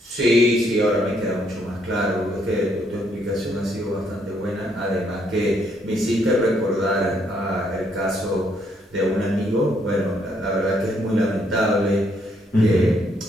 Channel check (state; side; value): normal; both; correlation 0.71